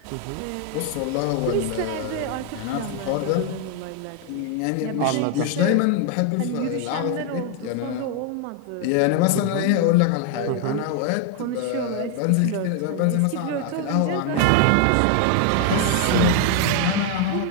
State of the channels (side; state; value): both; different; correlation 0.00